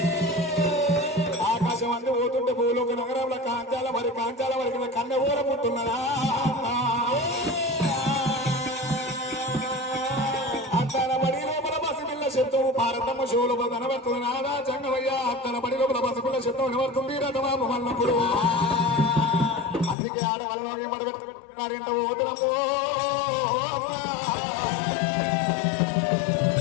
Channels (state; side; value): drops out; right; at 20.0 s